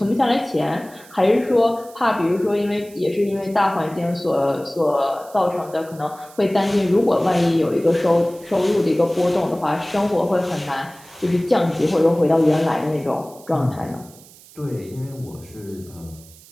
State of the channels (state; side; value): noise; right; hiss, 23 dB below the sound